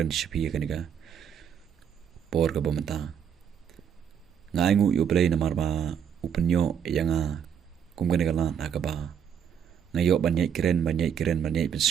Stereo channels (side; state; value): left; quieter; 8.1 dB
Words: shipi haganiga por ka pamata ngaimu U Blei namar ba upenyo yanga kumgani galan haka ba ngayo banyai kren banyai